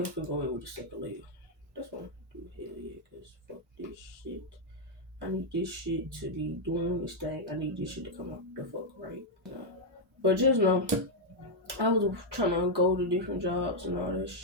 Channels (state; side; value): normal; both; correlation -0.01